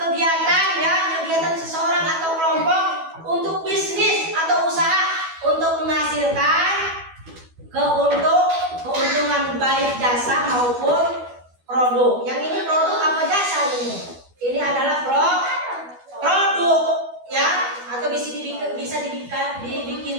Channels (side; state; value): left; late; 12 ms